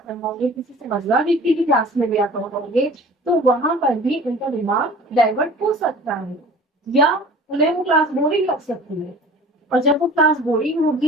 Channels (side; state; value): both; normal; correlation 0.44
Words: रहोगे, किसी समझदार व्यक्ति की क्लास में भी आप रहोगे, तो वहां पर भी उनका दिमाग डाइवर्ट हो सकता है या उन्हें वो क्लास बोरिंग लग सकती है। और जब वो क्लास बोरिंग